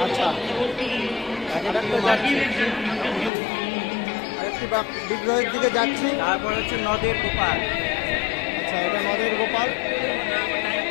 আচ্ছা, আরেকটি বিগ্রহের দিকে যাচ্ছি। তারপর হচ্ছে নদের গোপাল। আচ্ছা, এটা নদের গোপাল।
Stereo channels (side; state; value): right; drops out; at 3.3 s